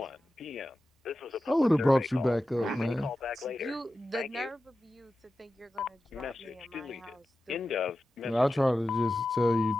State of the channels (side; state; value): both; normal; correlation 0.93